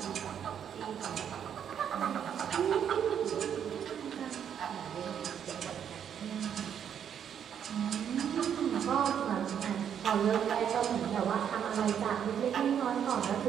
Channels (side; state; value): left; quieter; 8.6 dB